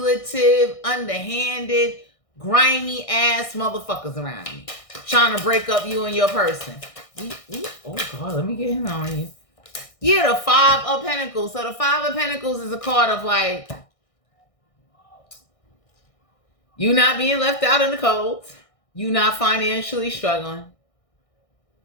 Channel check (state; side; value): late; right; 1.6 ms